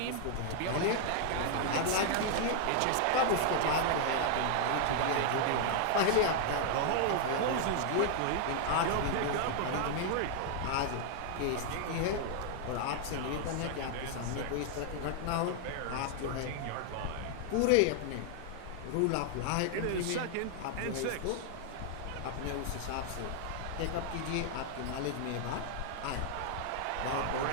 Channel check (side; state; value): both; different; correlation 0.00